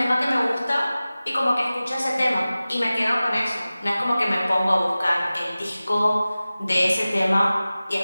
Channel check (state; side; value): inverted; both; correlation -0.97